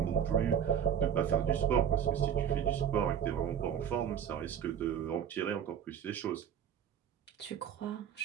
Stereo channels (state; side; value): quieter; left; 8.7 dB